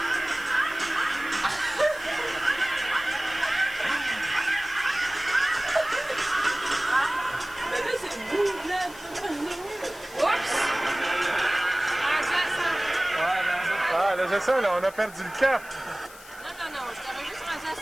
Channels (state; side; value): noise; left; hiss, 19 dB below the sound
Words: Mais là, c'est beau, là. Oups! Ah, là, c'est ça, là, on a perdu le cap. Non, j'étais juste rendu à